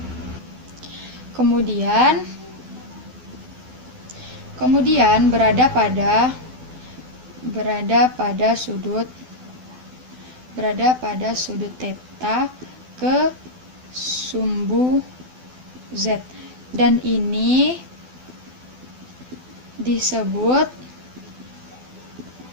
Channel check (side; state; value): left; late; 12 ms